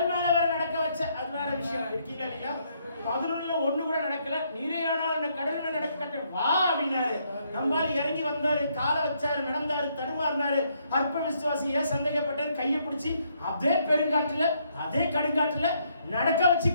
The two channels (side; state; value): both; inverted; correlation -0.72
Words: மேல வர நடக்க வச்ச, அது வேற விஷயம். இருக்கீங்களா இல்லையா? 11ல 1 கூட நடக்கல, நீரே ஆனால் கடல் மேல நடக்க கட்ட வா அப்படின்னாரு. நம்மால இறங்கி வந்தாரு, காலை வச்சாரு, நடந்தாரு, தடுமாறினாரு. அற்ப விசுவாசி ஏன் சந்தேகப்பட்டேன், கையை பிடிச்சி அதே பெருங்காட்டுல அதே கடுங்காட்டுல நடக்க வச்சு